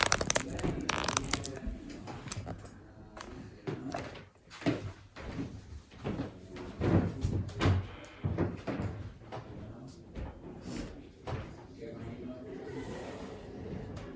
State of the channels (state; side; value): identical; both; correlation 1.00